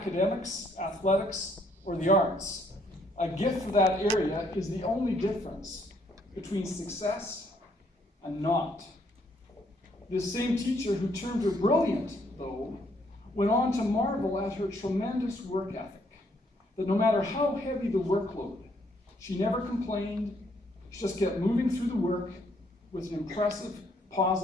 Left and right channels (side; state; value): both; normal; correlation 0.69